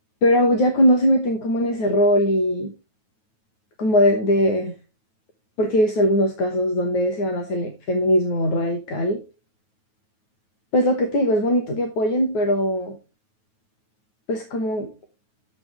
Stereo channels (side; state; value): right; late; 9.3 ms